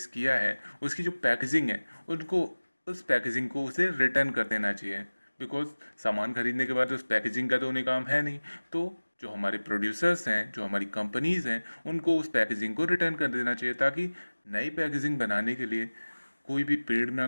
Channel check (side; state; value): both; inverted; correlation -1.00